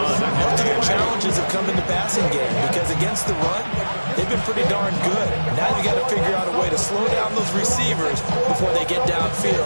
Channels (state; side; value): inverted; both; correlation -1.00